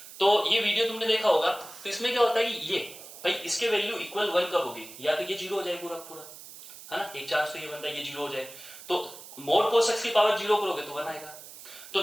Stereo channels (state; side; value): noise; right; hiss, 16 dB below the sound